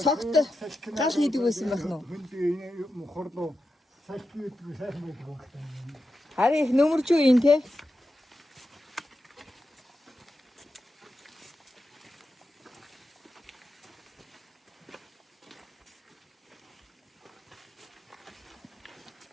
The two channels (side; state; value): both; normal; correlation 0.89